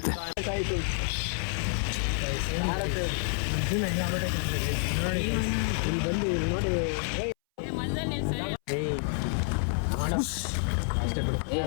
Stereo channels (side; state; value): right; silent; 59 dB below the other